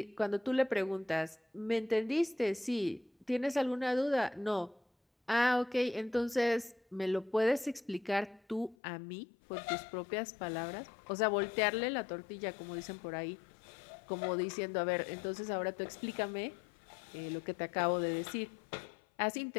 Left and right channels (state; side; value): drops out; right; at 8.8 s